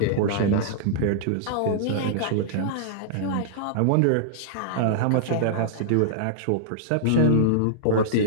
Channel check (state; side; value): different; both; correlation -0.02